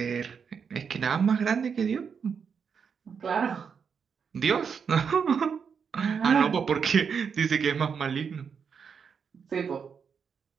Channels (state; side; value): quieter; left; 6.5 dB